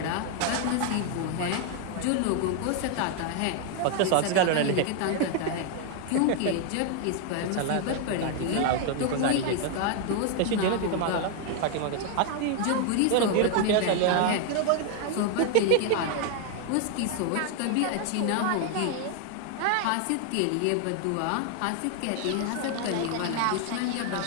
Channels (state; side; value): different; both; correlation 0.00